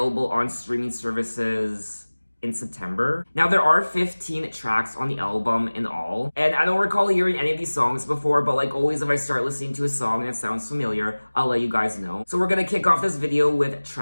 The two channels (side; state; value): both; inverted; correlation -1.00